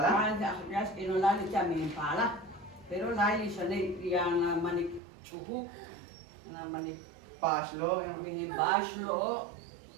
ya es que no la le llamen pala, pero la le sale yang manik chuhu, na manik Pashlo, mihin bashlo.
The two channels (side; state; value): left; drops out; at 5.0 s